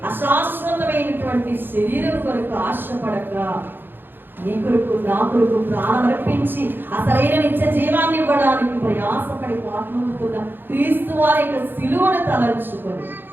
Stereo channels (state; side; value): late; left; 0.098 ms